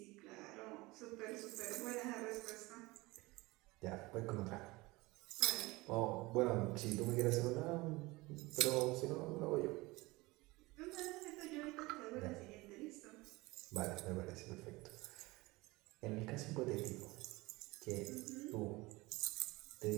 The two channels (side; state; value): left; quieter; 22.0 dB